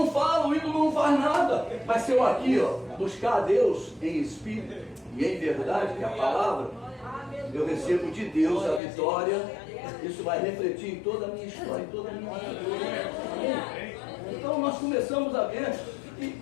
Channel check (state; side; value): drops out; right; at 8.8 s